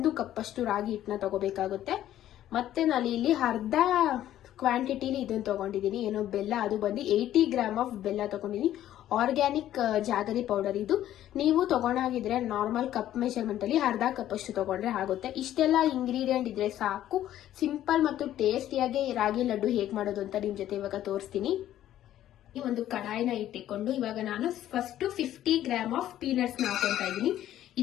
ಕಪ್ ಅಷ್ಟು ರಾಗಿ ಹಿಟ್ಟನ್ನ ತಗೋಬೇಕಾಗುತ್ತೆ. ಮತ್ತೆ ನಾನು ಇಲ್ಲಿ ಅರ್ಧ ಕ್ವಾಂಟಿಟಿಲಿ ಇದನ್ನ ತಗೊಂಡಿದ್ದೀನಿ, ಏನೋ ಬೆಲ್ಲ. ಅದು ಬಂದು 80 ಗ್ರಾಮ್ ಆಫ್ ಬೆಲ್ಲ ತಗೊಂಡಿದ್ದೀನಿ. ಆರ್ಗ್ಯಾನಿಕ್ ಜಾಗರಿ ಪೌಡರ್ ಇದು. ನೀವು ತಗೊಂಡಾಗಿದ್ರೆ ನಾರ್ಮಲ್ ಕಪ್ ಮೆಷರ್ಮೆಂಟ್ ಅಲ್ಲಿ ಅರ್ಧ ಕಪ್ ಅಷ್ಟು ತಗೊಂಡ್ರೆ ಆಗುತ್ತೆ. ಇಷ್ಟೆಲ್ಲ ಇಂಗ್ರೀಡಿಯೆಂಟ್ ಇದ್ರೆ ಸಾಕು. ಸಿಂಪಲ್ ಮತ್ತು ಟೇಸ್ಟಿಯಾಗಿ ರಾಗಿ ಲಡ್ಡು ಹೇಗ್ ಮಾಡೋದು ಅಂತ ನಿಮ್ ಜೊತೆ ಇವಾಗ ತೋರಿಸ್ತೀನಿ. ಈ ಒಂದು ಕಡಾಯಿನ ಇಟ್ಟಿಕೊಂಡು ಇವಾಗ ನಾನು ಫಸ್ಟ್ 50 ಗ್ರಾಮ್ ಆಫ್ ಪೀನಟ್ಸ್ ನ ಹಾಕೊಂತಾ ಇದ್ದೀನಿ.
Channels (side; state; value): right; quieter; 12.4 dB